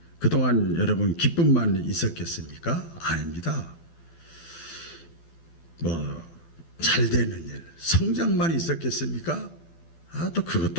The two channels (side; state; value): right; late; 12 ms